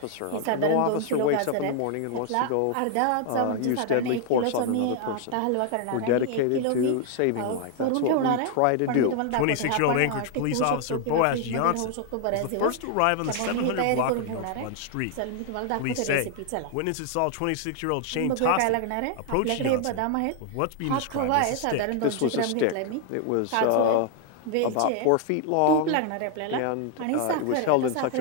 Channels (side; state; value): both; different; correlation 0.00